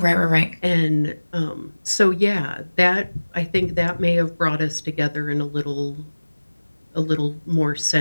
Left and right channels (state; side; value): inverted; both; correlation -1.00